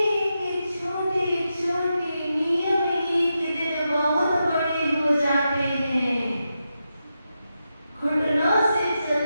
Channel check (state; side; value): inverted; both; correlation -0.87